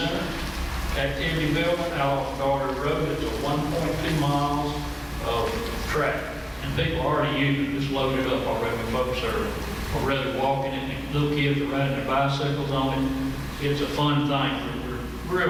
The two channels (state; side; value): identical; both; correlation 1.00